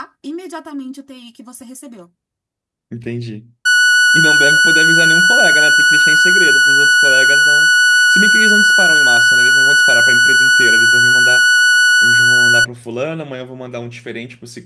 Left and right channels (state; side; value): identical; both; correlation 1.00